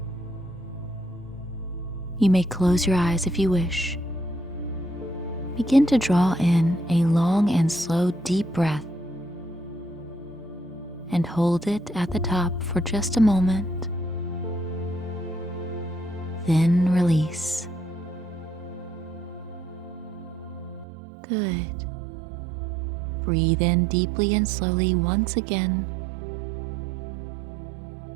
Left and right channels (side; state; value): left; drops out; at 20.9 s